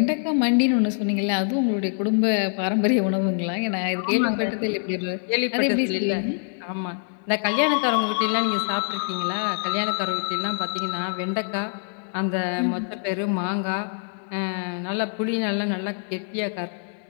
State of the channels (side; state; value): right; silent; 56 dB below the other